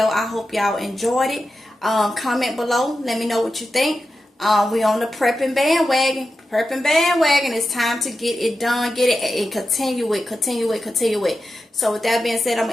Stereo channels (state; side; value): normal; both; correlation 0.91